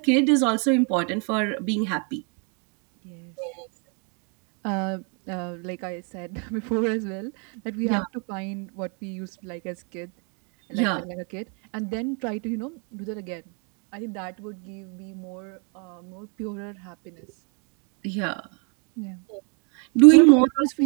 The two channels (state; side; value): quieter; left; 37.1 dB